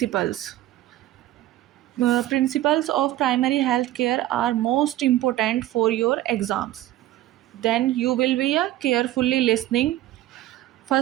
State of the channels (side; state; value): left; quieter; 14.7 dB